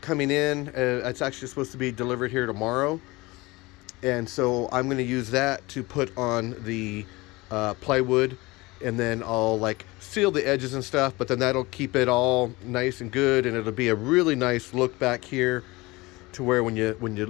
in. It's actually supposed to be delivered here tomorrow. And so I'm going to use that to put on the plywood, and then I'll like seal the edges and stuff, but then that'll keep it all nice and good, and it'll be a really nice look back here to where when you're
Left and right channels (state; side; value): quieter; right; 22.2 dB